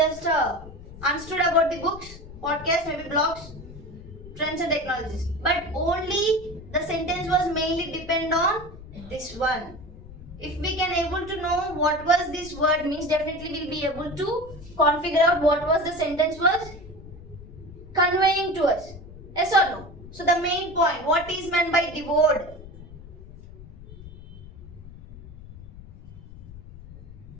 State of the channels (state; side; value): noise; left; rumble, 16 dB below the sound